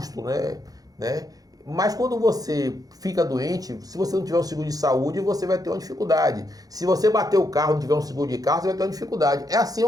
né? Mas quando você fica doente, se você não tiver um seguro de saúde, você vai ter uma dificuldade. Se você bater o carro e não tiver um seguro de carro, você vai ter uma dificuldade. É assim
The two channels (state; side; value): late; left; 0.18 ms